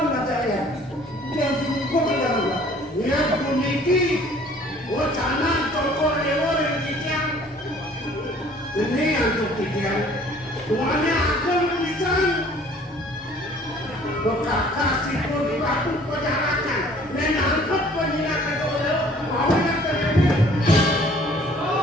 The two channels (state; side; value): normal; both; correlation 0.54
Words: kata ya, yang cukup yang dia memiliki wacana toko dewa yang kicang, ini yang kicang, tuanya akan bisa. Bekakasi pun aku penjarakan, menangkap penjarakan oleh mau yang terjadi.